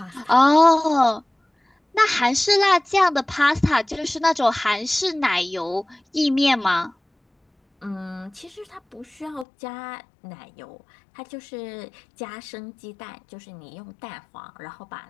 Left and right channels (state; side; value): drops out; right; at 9.5 s